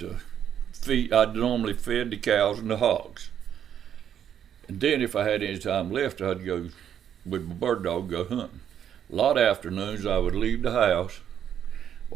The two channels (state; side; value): quieter; left; 9.3 dB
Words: feed. I'd normally fed the cows and the hogs. And then if I had any time left, I'd go with my bird dog, go hunting. A lot of afternoons I would leave the house,